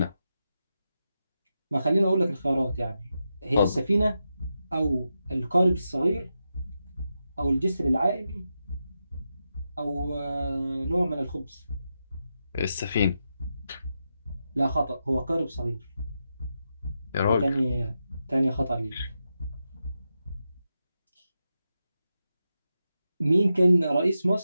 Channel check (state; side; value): inverted; both; correlation -0.88